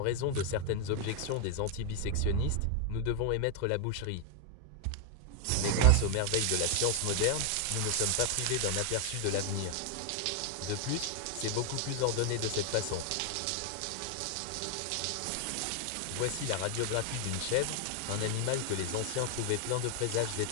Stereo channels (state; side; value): different; both; correlation 0.01